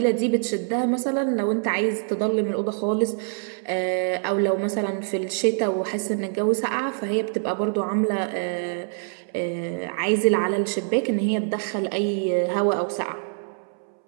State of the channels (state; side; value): silent; left; 62 dB below the other